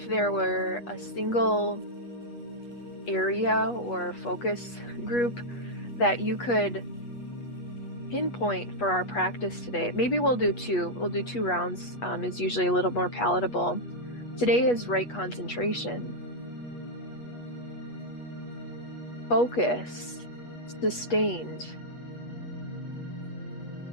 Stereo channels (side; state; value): right; late; 8.3 ms